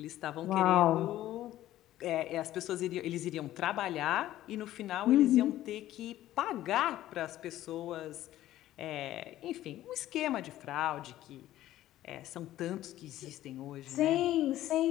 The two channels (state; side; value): quieter; right; 13.9 dB